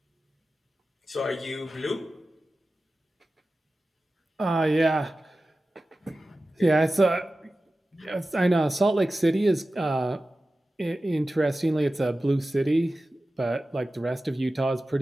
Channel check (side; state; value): both; normal; correlation 0.95